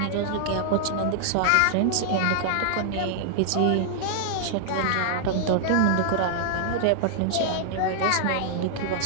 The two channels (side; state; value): both; different; correlation -0.01